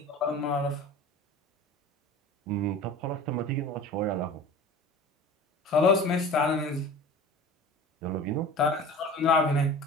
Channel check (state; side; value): normal; both; correlation 0.38